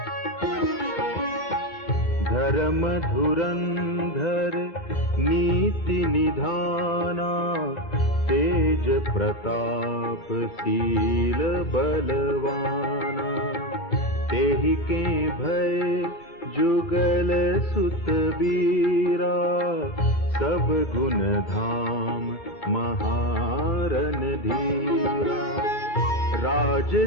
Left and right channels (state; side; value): late; right; 12 ms